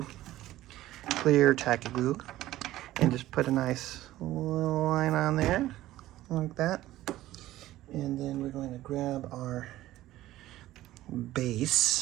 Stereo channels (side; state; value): left; quieter; 15.3 dB